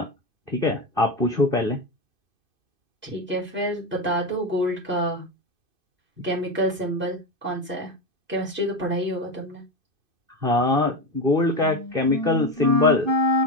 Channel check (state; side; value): late; left; 2.5 ms